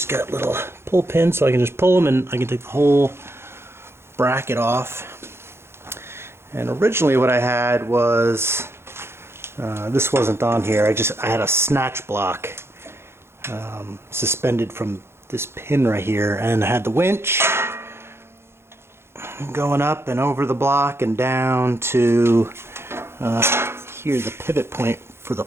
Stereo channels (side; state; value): left; late; 0.12 ms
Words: got little pull pins so I can just pull them and I can take the whole bracket off. And originally what I had was this wasn't on here. I had a snatch block suspended from this pin right here, and I had the winch going up and over the block and down to here, the pivot point for the